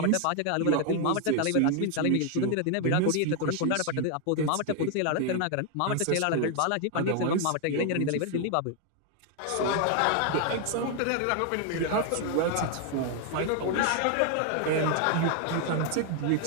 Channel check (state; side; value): different; both; correlation 0.00